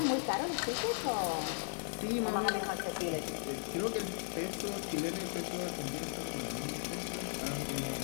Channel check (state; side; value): silent; right; digital silence